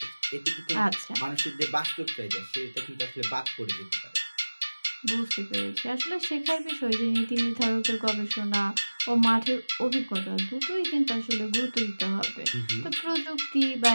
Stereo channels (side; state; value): both; inverted; correlation -1.00